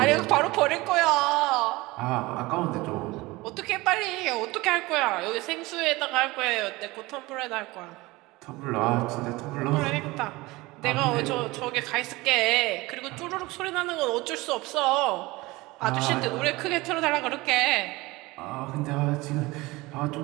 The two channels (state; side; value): quieter; left; 21.3 dB